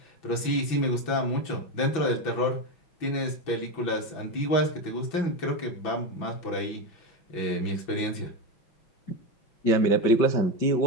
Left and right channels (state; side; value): late; right; 6.0 ms